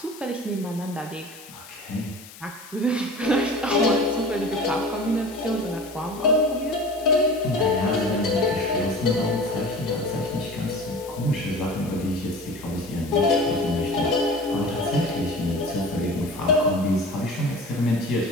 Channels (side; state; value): left; noise; hiss, 18 dB below the sound